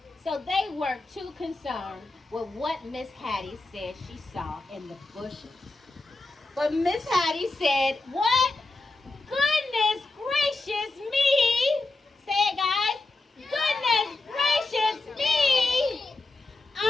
So they weren't too concerned with what Miss Hattie said she saw in the bushes. But Miss Hattie said, "What? Goodness gracious me." Say it, guys. "Goodness gracious me.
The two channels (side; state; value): right; quieter; 3.1 dB